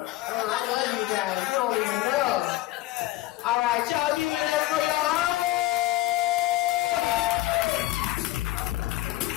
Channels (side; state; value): right; quieter; 16.8 dB